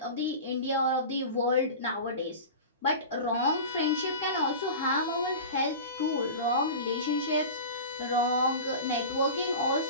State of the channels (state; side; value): inverted; both; correlation -0.32